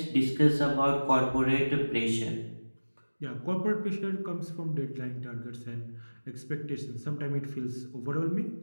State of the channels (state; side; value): inverted; both; correlation -1.00